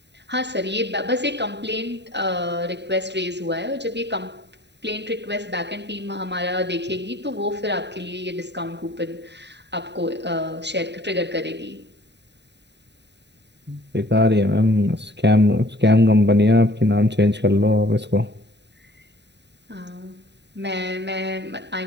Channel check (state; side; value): late; left; 0.50 ms